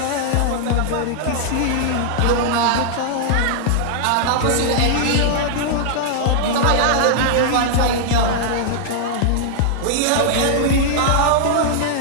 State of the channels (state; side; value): different; both; correlation -0.01